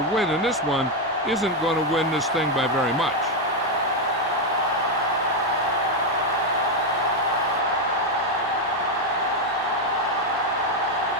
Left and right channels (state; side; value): normal; both; correlation 0.04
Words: win in this one isn't going to win this thing by very much.